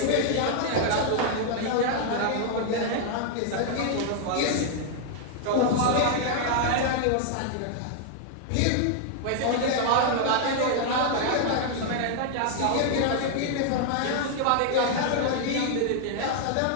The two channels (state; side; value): different; both; correlation 0.00